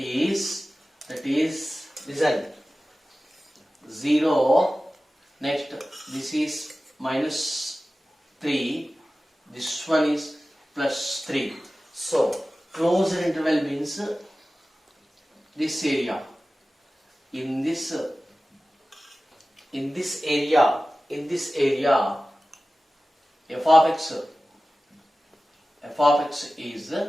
listen, 0. Next, this is minus 3, this one is plus 3. So closed interval means this area. In this area, f of x is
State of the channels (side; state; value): both; normal; correlation 0.96